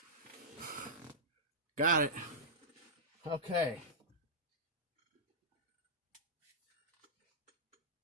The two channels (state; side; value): normal; both; correlation -0.13